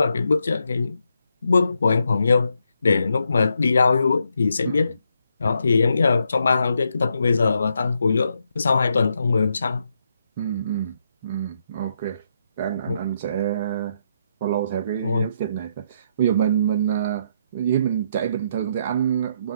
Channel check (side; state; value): both; inverted; correlation -0.78